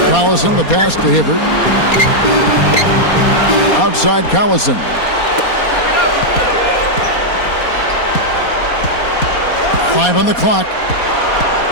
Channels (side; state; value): right; late; 4.2 ms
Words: Collison, the pass to Hibbert. Outside Collison. Five on the clock.